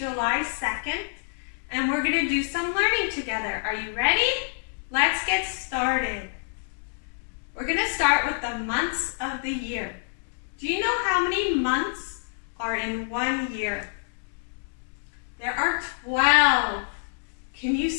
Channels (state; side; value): silent; right; digital silence